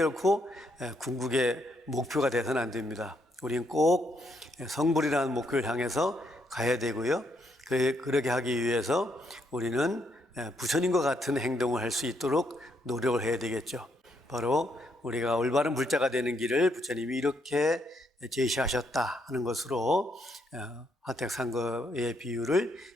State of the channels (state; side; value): normal; both; correlation 0.75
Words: 궁극의 목표가 되서는 안 됩니다. 우리는 꼭 성불이라는 목표를 향해서 가야 되고요. 그렇게 하기 위해서 우리는 부처님과 같은 행동을 할 수 있도록 노력을 해야 되겠죠. 바로 우리가 올바른 불자가 되는 길을 부처님이 이렇게 제시하셨다 하는 것으로 화택상거의 비유를